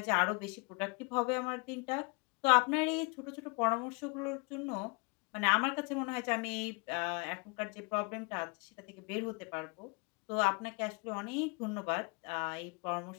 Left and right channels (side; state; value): right; quieter; 30.1 dB